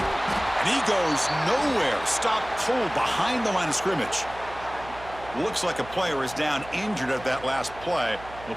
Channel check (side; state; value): right; noise; hum, 17 dB below the sound